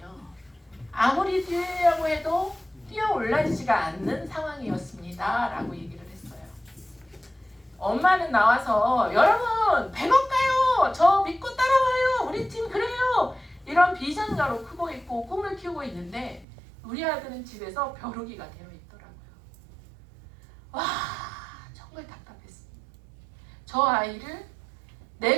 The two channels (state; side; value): drops out; left; at 16.4 s